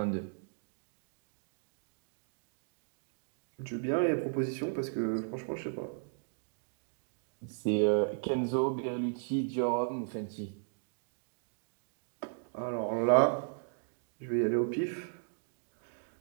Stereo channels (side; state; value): left; silent; digital silence